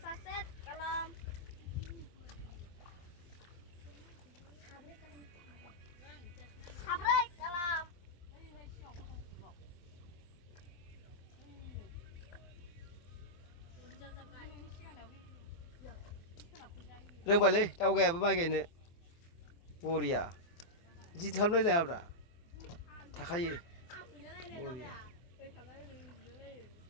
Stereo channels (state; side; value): late; right; 24 ms